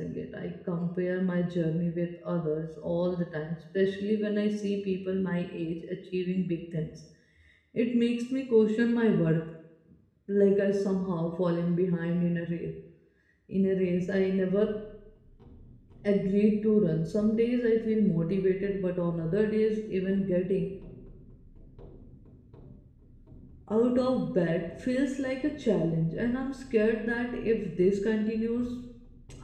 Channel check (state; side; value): identical; both; correlation 1.00